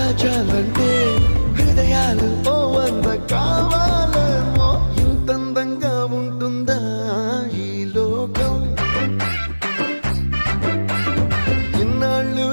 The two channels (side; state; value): both; inverted; correlation -1.00